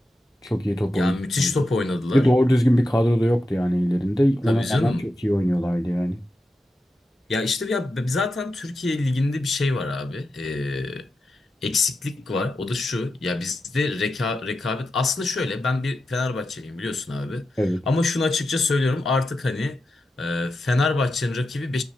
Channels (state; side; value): normal; both; correlation 0.89